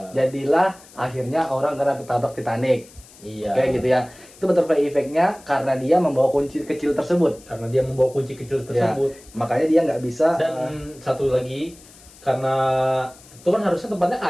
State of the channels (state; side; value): noise; left; hiss, 23 dB below the sound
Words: Jadilah akhirnya orang kena tertabrak Titanic. Iya. Kayak gitu ya. Itu butterfly effect-nya karena dia membawa kunci kecil tersebut. Karena dia membawa kunci kecil tersebut. Makanya dia nggak bisa. Dan satu lagi, karena itu kan harusnya tempatnya